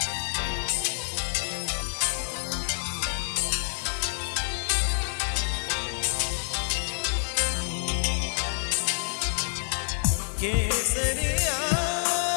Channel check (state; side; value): silent; right; digital silence